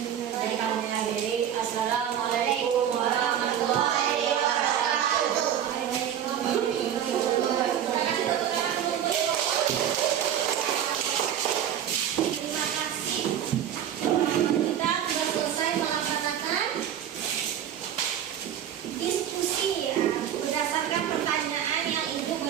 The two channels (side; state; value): left; quieter; 9.9 dB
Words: kami akhiri. Assalamualaikum warahmatullahi wabarakatuh. Terima kasih. Kita sudah selesai melaksanakan diskusi ya, berdasarkan pertanyaan yang Ibu